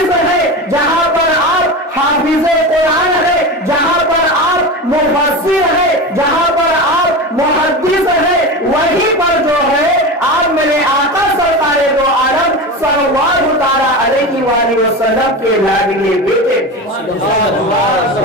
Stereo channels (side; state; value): both; normal; correlation 0.24